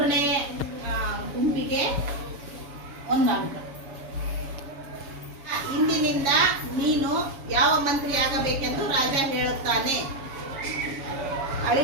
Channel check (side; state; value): left; late; 7.1 ms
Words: ಗುಂಪಿಗೆ 1 ಅಂಕ. ಇಂದಿನಿಂದ ನೀನು ಯಾವ ಮಂತ್ರಿ ಆಗಬೇಕೆಂದು ರಾಜ ಹೇಳುತ್ತಾನೆ.